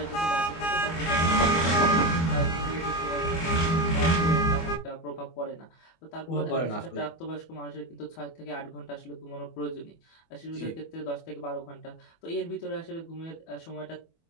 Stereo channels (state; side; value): late; right; 24 ms